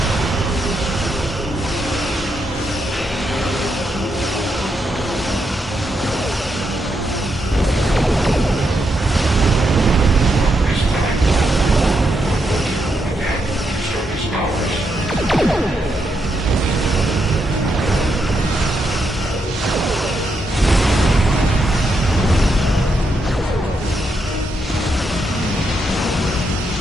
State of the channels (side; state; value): both; normal; correlation 0.81